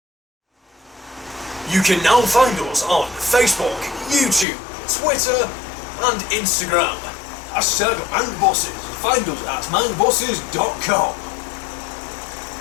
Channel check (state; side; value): drops out; right; at 4.5 s